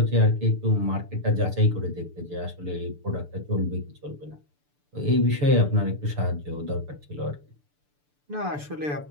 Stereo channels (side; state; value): left; late; 6.8 ms